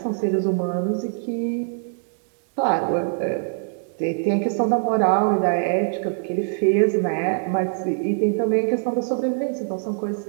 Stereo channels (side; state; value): left; silent; 63 dB below the other